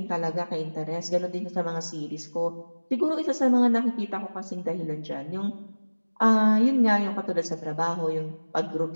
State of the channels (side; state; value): both; inverted; correlation -1.00